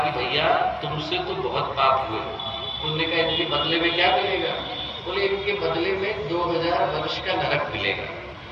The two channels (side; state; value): both; identical; correlation 1.00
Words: कि भैया तुमसे तो बहुत पाप हुए। उन्होंने कहा इनके बदले में क्या मिलेगा? बोले इनके बदले में 2000 वर्ष का नरक मिलेगा।